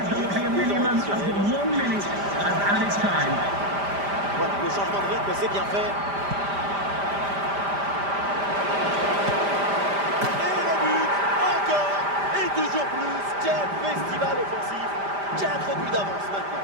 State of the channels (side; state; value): left; late; 5.0 ms